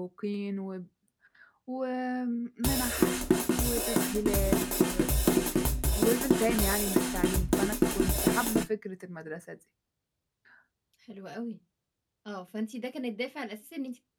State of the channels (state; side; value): identical; both; correlation 1.00